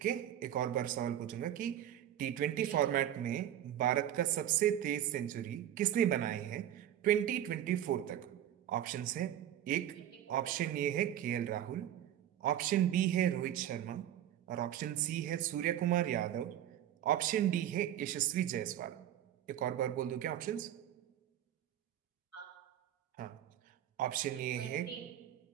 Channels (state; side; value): quieter; left; 11.4 dB